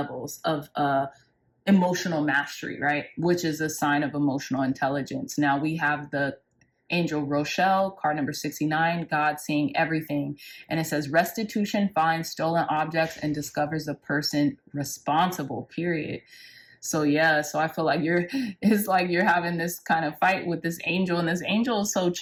of emotional mastery, right? Which is a sign of emotional intelligence. Now we have the Angel Rochelle, card number 69, God seeing everything. And it says restitution finds stolen objects and discovers the person responsible, period. So yeah, so I feel like it's like you're having this kind of fight with this angel, and this angel is so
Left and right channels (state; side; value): identical; both; correlation 1.00